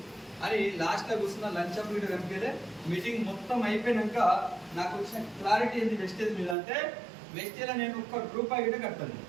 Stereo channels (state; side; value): drops out; left; at 6.6 s